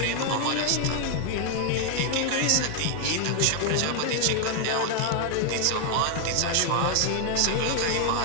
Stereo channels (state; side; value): different; both; correlation 0.00